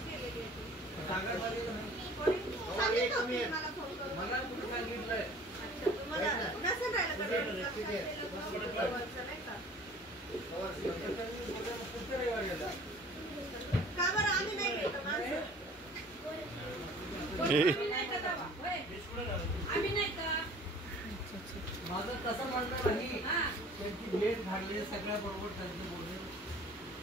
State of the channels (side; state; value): both; normal; correlation 0.48